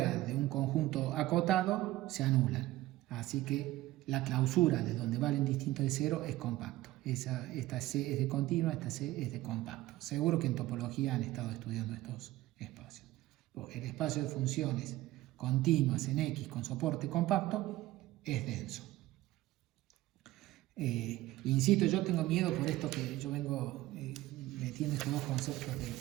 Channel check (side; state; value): left; quieter; 16.7 dB